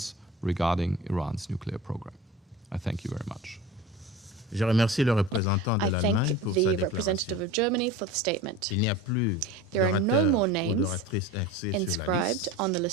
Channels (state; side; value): normal; both; correlation 0.33